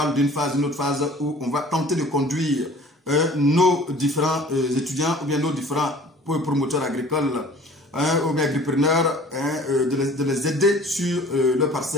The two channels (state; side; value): normal; both; correlation 0.48